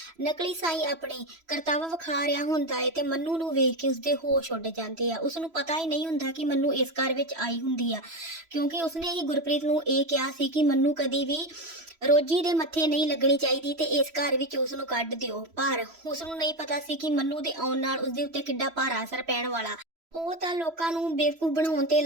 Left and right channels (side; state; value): left; late; 3.0 ms